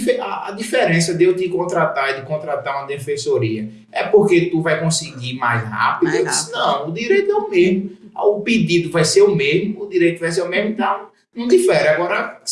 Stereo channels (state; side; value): identical; both; correlation 1.00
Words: diferença de eu te contratar e de contratar uma defensoria é porque tu vai conseguir mais rápido? Eu disse, não, o direito é o mesmo, o pedido vai ser o mesmo, o direito vai ser o mesmo, então não difere. Agora,